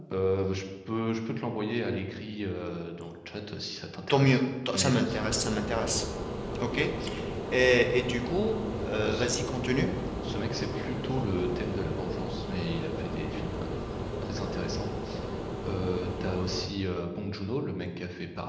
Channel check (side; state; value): both; identical; correlation 1.00